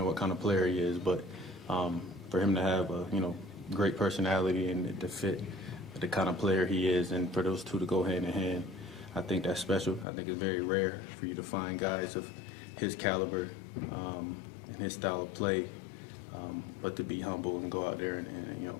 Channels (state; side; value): drops out; right; at 10.1 s